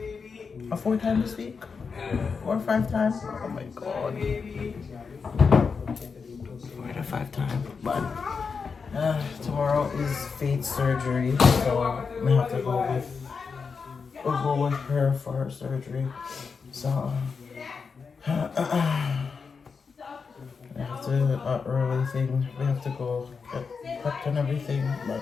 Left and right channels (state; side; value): quieter; right; 5.3 dB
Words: times this week, 4 or 5 times. Oh my god, 4 to 5 times. But tomorrow is Faith's surgery, so I have to go with her for her surgery. So I have to early thing. We have to go get prepped and everything. But